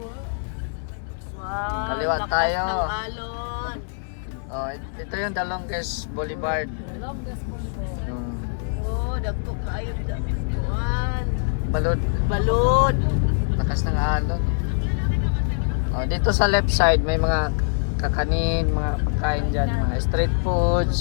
Wow, Kaliwa lakas tayo. ng alon. Oh, ito yung The Longest Boulevard. Oh, dagko kayo dagkuan. Balod. Balod. Lakas ng alon. Oh, dito sa left side may mga kakanin, mga pagkain dyan, mga street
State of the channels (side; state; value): right; silent; digital silence